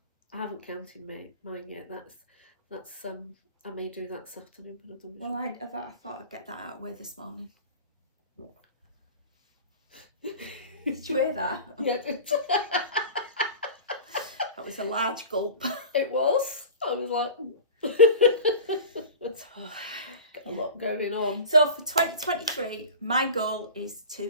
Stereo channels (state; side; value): inverted; both; correlation -0.35